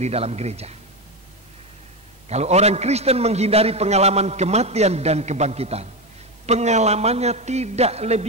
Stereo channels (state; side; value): normal; both; correlation 0.14